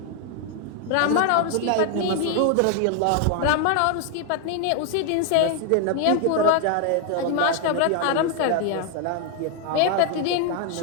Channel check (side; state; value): both; different; correlation 0.00